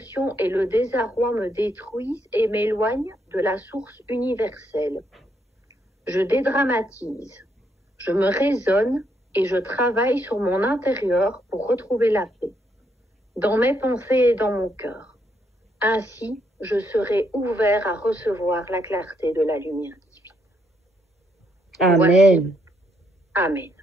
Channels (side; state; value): both; normal; correlation 0.75